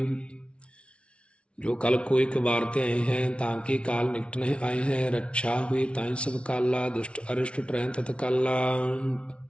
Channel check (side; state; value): right; late; 0.060 ms